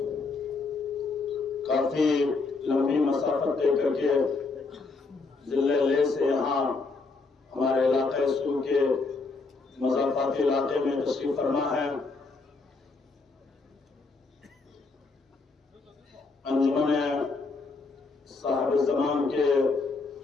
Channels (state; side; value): quieter; right; 4.0 dB